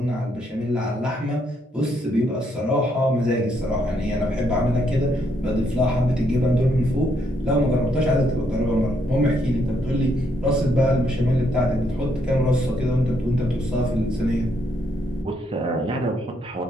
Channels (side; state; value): both; normal; correlation 0.74